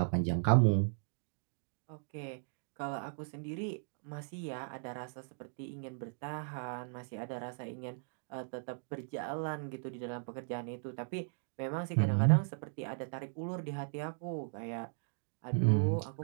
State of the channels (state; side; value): silent; left; digital silence